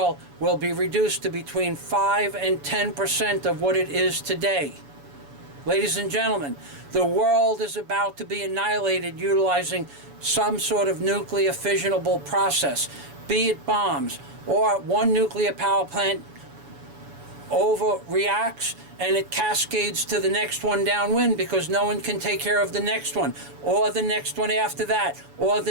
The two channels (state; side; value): late; left; 7.1 ms